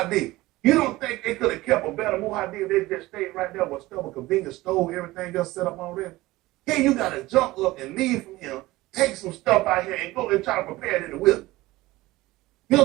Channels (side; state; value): left; quieter; 18.8 dB